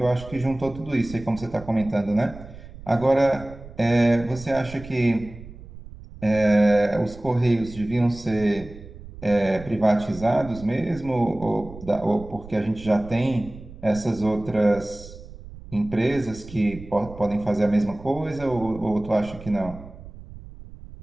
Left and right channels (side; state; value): right; noise; rumble, 16 dB below the sound